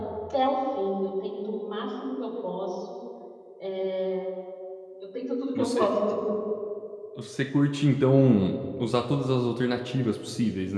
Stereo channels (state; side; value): identical; both; correlation 1.00